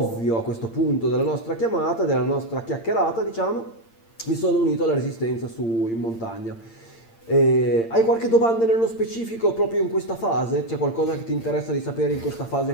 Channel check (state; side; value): late; right; 8.8 ms